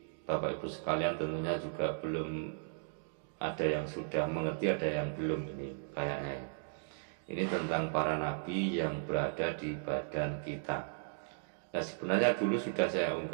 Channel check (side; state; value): left; silent; digital silence